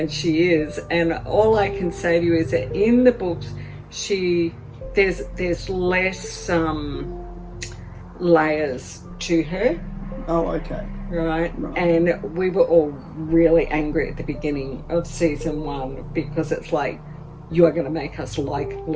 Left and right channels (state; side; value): identical; both; correlation 1.00